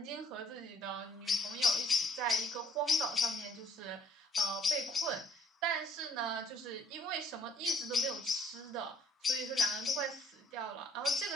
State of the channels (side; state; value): both; normal; correlation 0.61